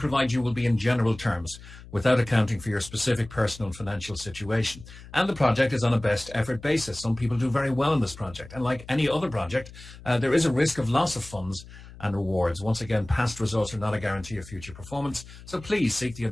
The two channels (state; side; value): noise; left; hum, 18 dB below the sound